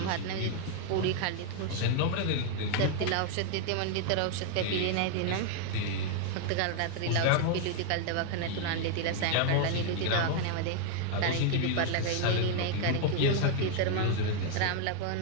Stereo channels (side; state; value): both; different; correlation 0.00